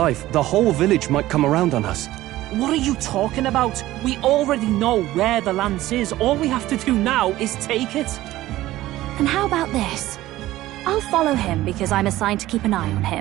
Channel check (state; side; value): quieter; left; 15.9 dB